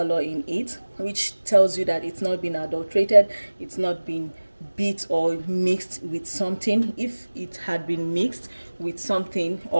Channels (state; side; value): inverted; both; correlation -1.00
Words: in it, which tells you that it's not been adulterated, it's not been beat or mixed with something. If it had been mixed with something,